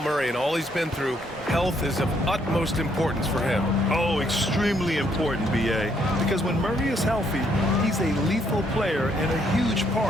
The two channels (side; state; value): both; normal; correlation 0.71